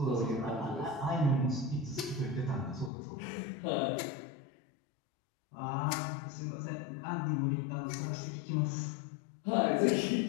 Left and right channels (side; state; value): right; drops out; at 2.9 s